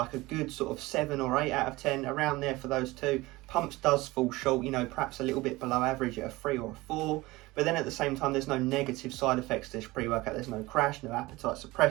a good sort of 7 or 8 out of 10, around there for those two. Pumps does fall short, you know, perhaps a little bit below average at a 3 or a 4. But then at the same time, there's no negative side effects to this pre-workout. There's no crash, no appetite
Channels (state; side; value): quieter; left; 20.4 dB